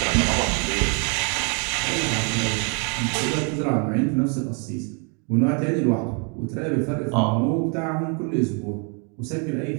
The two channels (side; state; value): left; quieter; 37.1 dB